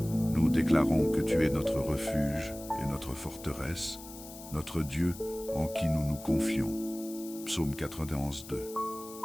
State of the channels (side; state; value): left; noise; hiss, 15 dB below the sound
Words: Nous déclarons que tu es notre refuge et notre forteresse, notre Dieu en qui nous nous confions. Psaume 91, 2.